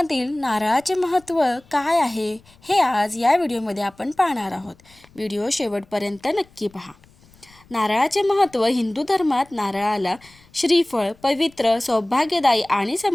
नारळाचे महत्त्व काय आहे हे आज या व्हिडिओमध्ये आपण पाहणार आहोत. व्हिडिओ शेवटपर्यंत नक्की पहा. नारळाचे महत्त्व. हिंदू धर्मात नारळाला श्रीफळ, पवित्र, सौभाग्यदायी आणि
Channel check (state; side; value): noise; left; rumble, 29 dB below the sound